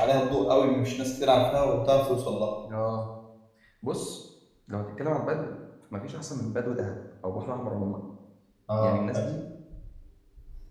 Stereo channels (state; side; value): identical; both; correlation 1.00